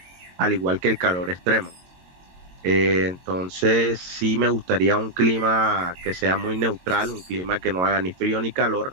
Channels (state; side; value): late; left; 22 ms